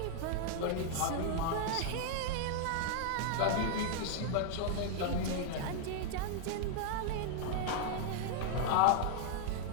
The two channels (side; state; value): both; different; correlation 0.00